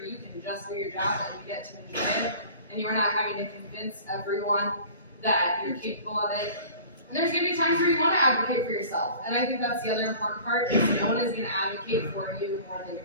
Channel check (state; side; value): inverted; both; correlation -0.43